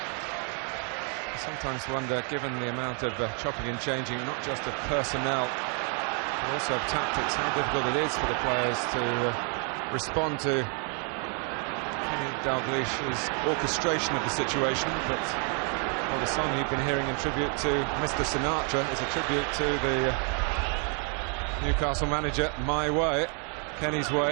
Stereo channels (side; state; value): left; quieter; 39.9 dB